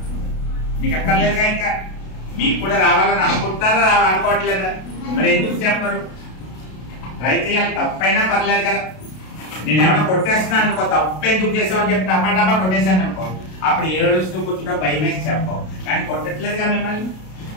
మీకు అక్కర్లేదుగా. ఇంకా మీకు కూడా రావాలని అనుకుంటారా? అనుకోవట్లేదా? మరి ఎందుకు చెప్పరు? ట్రై చేయాలి. తప్పైనా పర్లేదు కదా. నేను ఏమైనా కొట్టేస్తున్నాను అనుకో, తప్పు ఎందుకు చేసామని చెప్పి డబ్బా కొట్టేశాను అనుకో, అప్పుడు ఏడుస్తూ కూర్చుంటా, భయం వేసి చెప్పవు. కానీ కొట్టట్లేదుగా మిమ్మల్ని.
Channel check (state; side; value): late; right; 32 ms